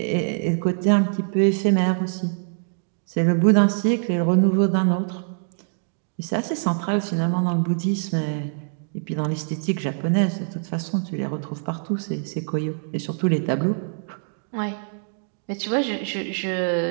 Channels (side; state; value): left; silent; digital silence